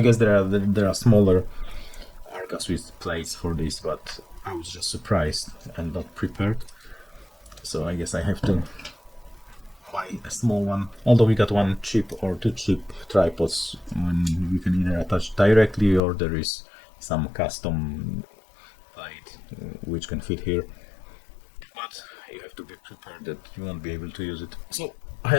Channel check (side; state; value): right; drops out; at 16.0 s